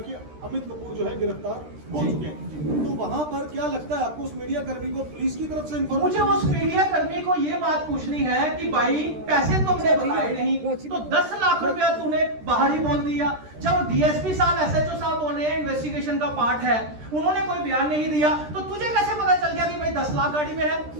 अमित कपूर जो है गिरफ्तार हो चुके हैं। तो वहां पर क्या लगता है आपको, उस मीडिया कर्मी को पुलिस की तरफ से मुझे उस मीडिया कर्मी को ये बात पूछनी है कि भाई पैसे तुमने बताए नहीं तो 10 लाख रुपया तूने बाहर ही बोल दिया। जब डीएसपी साहब, एसएचओ साहब बोल रहे हैं इन्वेस्टिगेशन का पार्ट है, उन्होंने कोई बयान नहीं दिया, तो तुझे कैसे पता चल गया कि भाई 10 लाख गाड़ी में है?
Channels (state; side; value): late; left; 13 ms